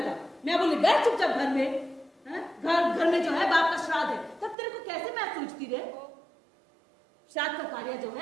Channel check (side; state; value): left; drops out; at 4.5 s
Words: मैं बोली बैठ चुपचाप घर में। घर में जो है बाप का श्राद्ध है, तब तेरे को कैसे मैच सूझती रे? श्राद्ध का कार्य जो